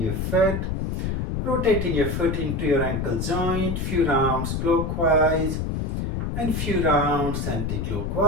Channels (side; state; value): left; noise; rumble, 2 dB below the sound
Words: foot, rotating your foot into your ankle joint, few rounds clockwise and few rounds